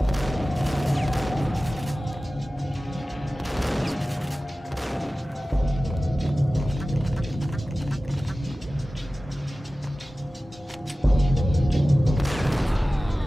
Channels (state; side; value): normal; both; correlation 0.96